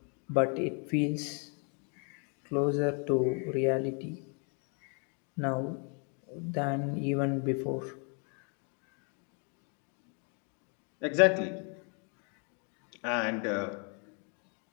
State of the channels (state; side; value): quieter; right; 38.2 dB